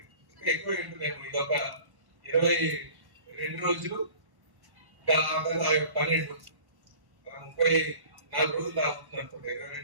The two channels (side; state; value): left; late; 1.1 ms